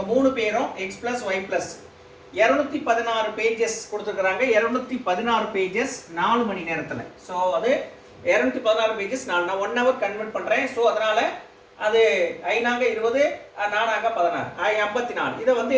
3 பேரும் X plus Y plus 216 pages கொடுத்துருக்காங்க. 216 பேஜஸ் 4 மணி நேரத்தில். ஸோ அது 216 பேஜஸ் நான் 1 hour கன்வெர்ட் பண்ணுறேன். ஸோ அதனால அது 5 20 4 16 54. இதை வந்து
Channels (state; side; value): identical; both; correlation 1.00